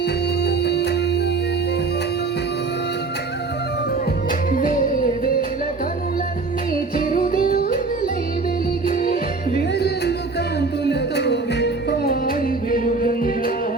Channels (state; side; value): quieter; left; 3.9 dB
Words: వేవేల కనులన్నీ చిరుదివ్వులై వెలిగి, వేరెల్లు కాంతులతో విప్పాయి వెలుగంగా.